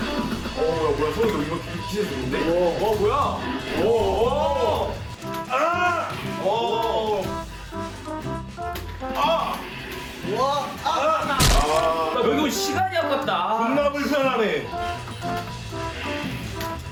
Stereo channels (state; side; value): identical; both; correlation 1.00